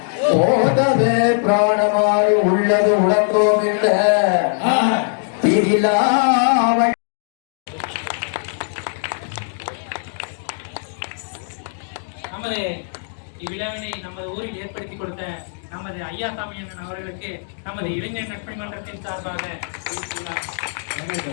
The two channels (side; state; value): right; silent; digital silence